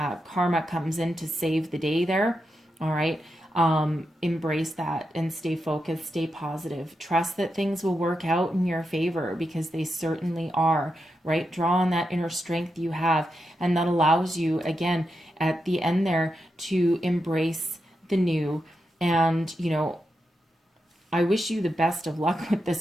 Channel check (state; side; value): normal; both; correlation 0.87